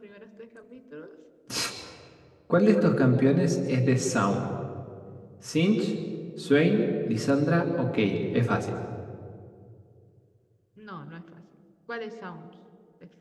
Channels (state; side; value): identical; both; correlation 1.00